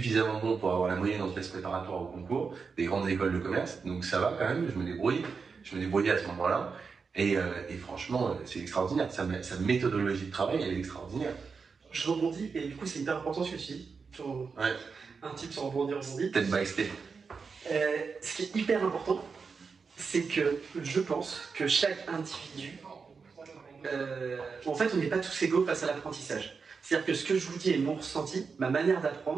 bon pour avoir la moyenne en classe préparatoire au concours des grandes écoles de commerce, donc ça va quand même, je me débrouillais à ce moment-là. Et franchement, c'est extraordinaire. Sa méthodologie de travail, elle est extraordinaire. Je rebondis, et du coup, c'est hyper important ce que tu dis. Un type sur rebondir, Step by step. Ce qui est hyper important, c'est que je pense que chaque individu, en fait, on n'est pas tous égaux face à l'apprentissage. C'est-à-dire que ce que je vous dis est mon ressenti, ma manière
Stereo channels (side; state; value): left; quieter; 5.2 dB